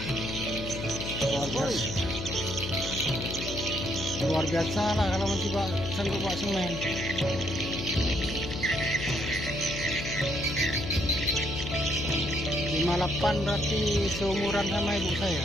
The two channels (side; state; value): left; noise; hum, 7 dB below the sound